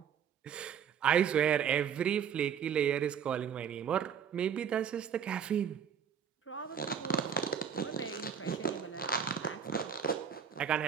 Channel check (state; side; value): quieter; left; 7.8 dB